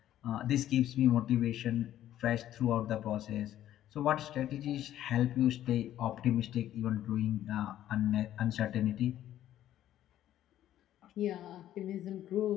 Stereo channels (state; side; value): quieter; right; 12.3 dB